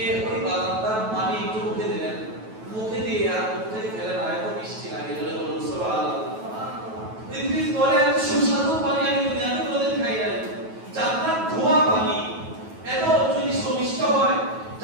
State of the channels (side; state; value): left; late; 9.2 ms